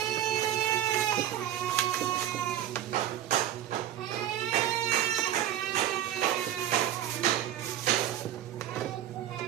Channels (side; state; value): left; quieter; 11.7 dB